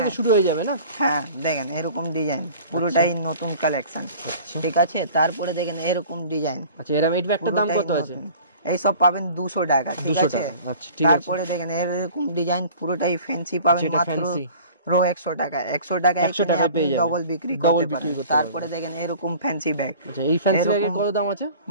শুরু হয়ে যাবে না? হ্যাঁ, দেখেন এরকম ডিজাইন, পুরোটাই নতুন কালেকশন। ঠিক আছে, তারপরে দেখেন এরকম ডিজাইন। আচ্ছা, এর একটা দাম কত আছে? এই সব পাবেন 200 টাকা। ঠিক আছে, তারপরে দেখেন এরকম ডিজাইন, পুরোটাই ফ্যান্সি পাবেন মাত্র 100 টাকা। 100 টাকায় ডবল বিক্রি করতে পারেন। তারপরে দেখেন এরকম ফ্যান্সি ব্যাগ। এই ফ্যান্সি ব্যাগের কত দাম আছে?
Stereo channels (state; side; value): inverted; both; correlation -0.45